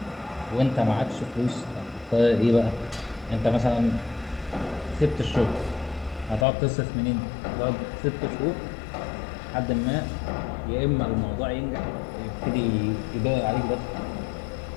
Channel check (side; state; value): right; drops out; at 6.5 s